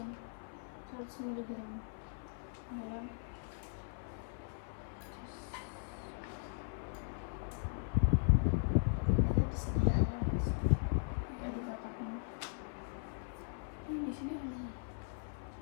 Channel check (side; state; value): right; silent; 52 dB below the other